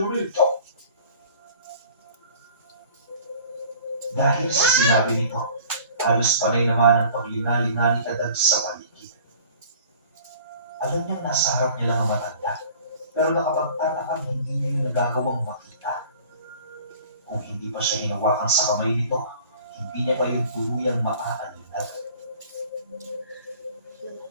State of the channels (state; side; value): inverted; both; correlation -0.48